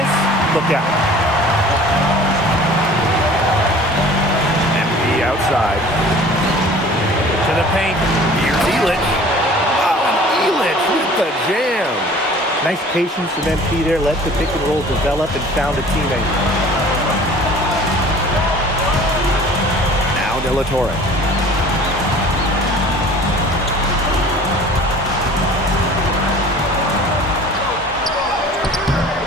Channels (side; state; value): both; normal; correlation 0.47